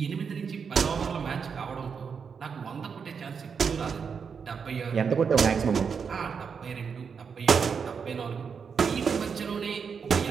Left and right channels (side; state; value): left; quieter; 6.2 dB